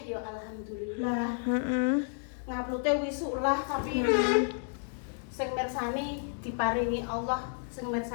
ya alhamdulillah. Nguploadnya wisuk lah, tapi sing mirsani diparingi Allah, sing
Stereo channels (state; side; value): silent; right; 57 dB below the other